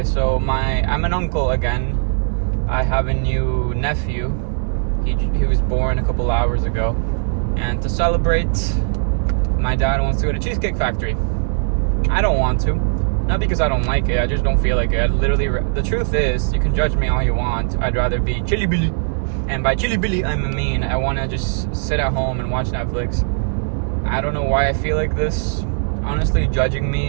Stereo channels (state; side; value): silent; left; digital silence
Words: so I'm an uncle again. I have a new nephew. He was born a couple hours ago, and to celebrate, my dad wants to go to Cheesecake Factory. I don't want to, not because I don't like it, I just don't feel like it. The truth is, you can judge me all you want, I'd rather be Chili Billy, and by Chili Billy I mean I want to just sit at home and watch Netflix. I don't know why I feel like this. Honestly, judging